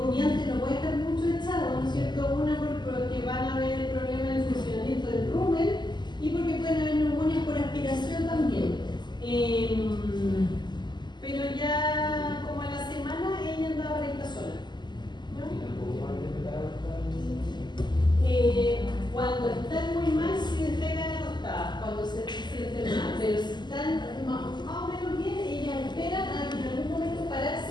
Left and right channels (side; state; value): right; late; 0.21 ms